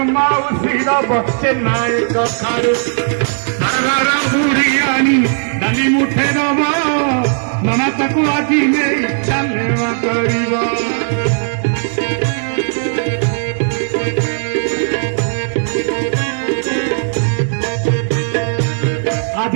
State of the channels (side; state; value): left; silent; 69 dB below the other